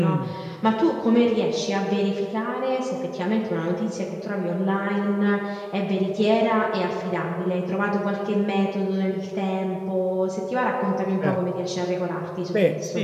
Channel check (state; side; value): identical; both; correlation 1.00